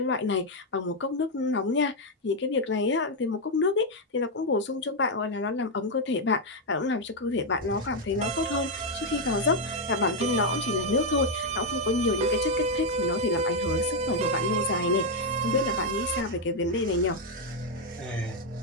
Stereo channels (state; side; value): normal; both; correlation 0.01